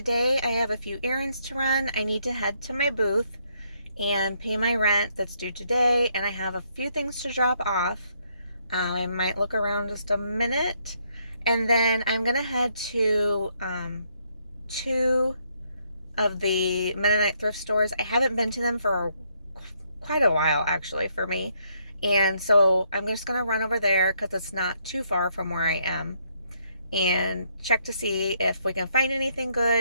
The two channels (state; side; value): inverted; both; correlation -0.72